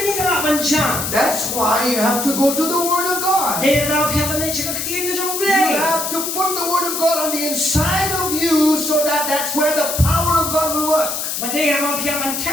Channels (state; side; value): noise; left; hiss, 3 dB below the sound